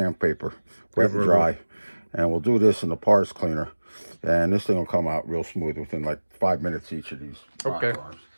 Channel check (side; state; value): both; inverted; correlation -1.00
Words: wet and dry, and we'll do this in the parts cleaner. And this thing will come out real smooth within like 5 minutes each of these. Okay. Bars.